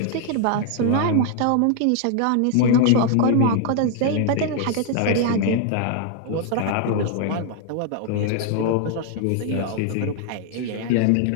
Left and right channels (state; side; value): different; both; correlation 0.00